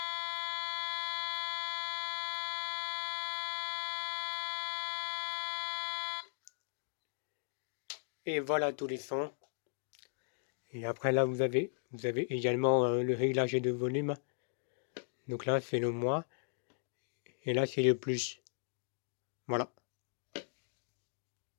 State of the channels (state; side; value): silent; right; digital silence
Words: Et voilà tous les sons. Et après là vous avez également le réglage de volume. Donc là c'est le moins. Et là c'est le plus. Voilà.